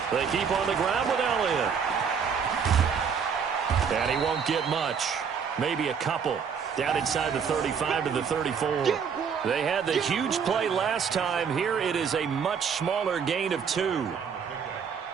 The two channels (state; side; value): quieter; left; 6.7 dB